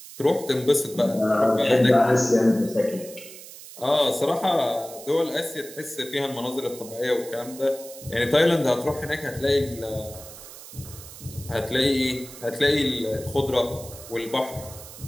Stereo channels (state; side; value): noise; right; hiss, 16 dB below the sound